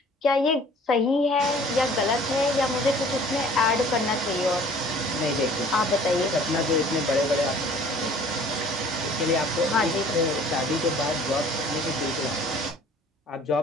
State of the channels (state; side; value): normal; both; correlation 0.51